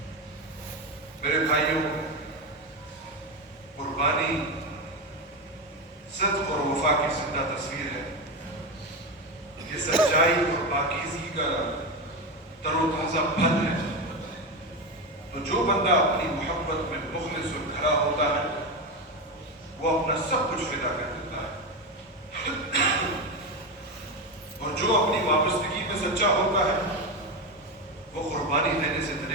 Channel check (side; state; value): both; normal; correlation 0.15